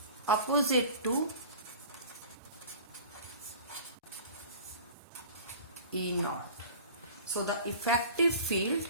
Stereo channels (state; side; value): inverted; both; correlation -0.41